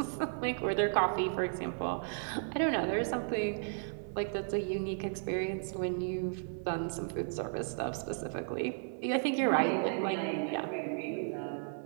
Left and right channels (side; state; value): left; silent; 55 dB below the other